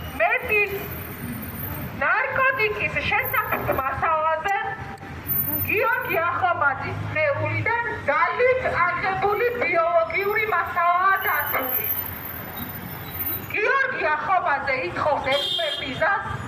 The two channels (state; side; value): identical; both; correlation 1.00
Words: მეტიც ნარკოტიკის შესახებ მასალაზე გიორგი ახობაძის სხეულიდან ძალით აღებული ბიოლოგიური მასალაა დაცული. გიორგი ახობაძე ითხოვს ექსპერტიზას,